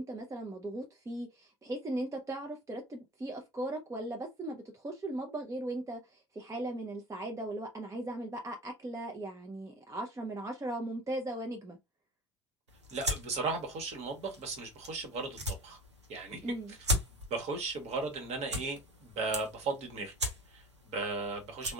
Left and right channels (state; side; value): normal; both; correlation 0.37